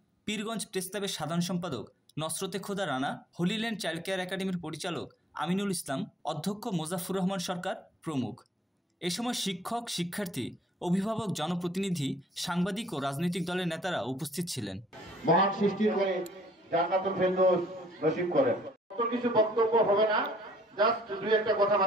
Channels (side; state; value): both; normal; correlation 0.60